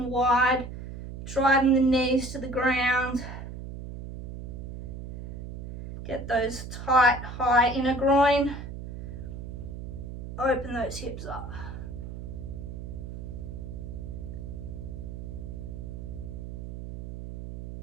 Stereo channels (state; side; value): noise; right; hum, 8 dB below the sound